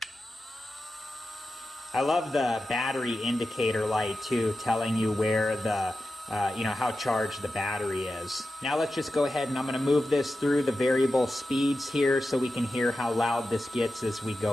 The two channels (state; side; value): normal; both; correlation 0.92